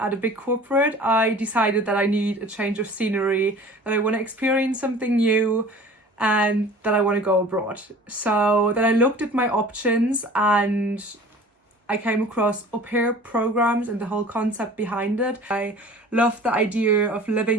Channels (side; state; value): both; normal; correlation 0.44